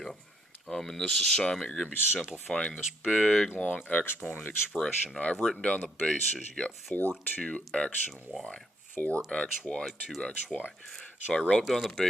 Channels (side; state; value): both; normal; correlation 0.71